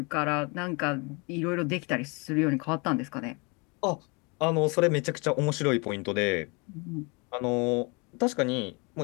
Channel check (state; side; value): quieter; right; 30.3 dB